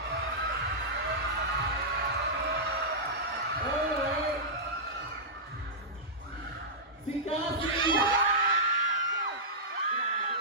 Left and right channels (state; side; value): normal; both; correlation -0.13